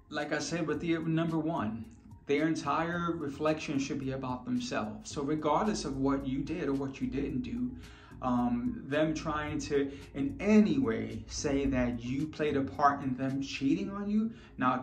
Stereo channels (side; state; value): both; identical; correlation 1.00